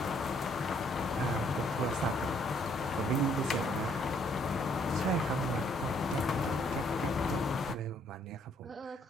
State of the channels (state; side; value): normal; both; correlation 0.67